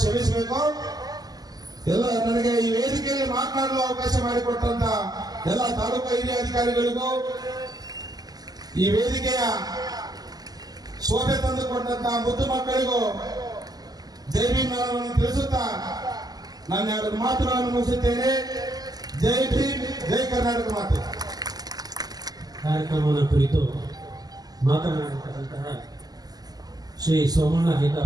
ಎಲ್ಲ ನನಗೆ ಈ ವೇದಿಕೆಯಲ್ಲಿ ಮಾತನಾಡುವ ಅವಕಾಶ ಮಾಡಿಕೊಟ್ಟಂತ ಎಲ್ಲ ತಾಲೂಕು ಹಿರಿಯ ಅಧಿಕಾರಿಗಳಿಗೂ, ಈ ವೇದಿಕೆಯ ಶೋಭೆ ತಂದುಕೊಂಡಂತ ಮುದ್ದು ಮಕ್ಕಳಿಗೂ ಜೈ ಭೀಮ್ ನಮನವನ್ನು ತಿಳಿಸುತ್ತಾ ನಾನು ಎರಡು ಮಾತುಗಳನ್ನು ಮುಗಿಸುತ್ತೇನೆ. ಜೈ ಭೀಮ್, ಜೈ ಕರ್ನಾಟಕ ಮಾತೆ. ಕಾರ್ಯಕ್ರಮದ ಕುರಿತು ಮಾತನಾಡಿರ್ತಕ್ಕಂತಹ ಶ್ರೀ ಸೋಮಣ್ಣ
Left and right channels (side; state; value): left; late; 0.19 ms